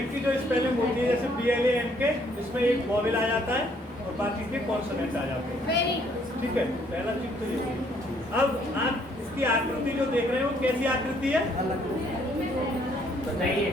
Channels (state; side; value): normal; both; correlation 0.66